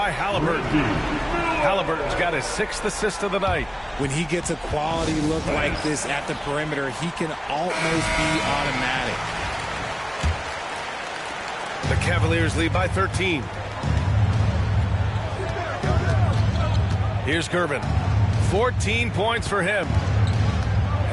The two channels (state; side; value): identical; both; correlation 1.00